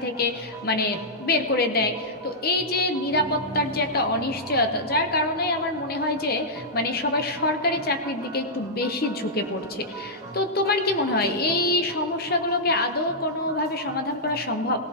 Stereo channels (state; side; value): normal; both; correlation -0.09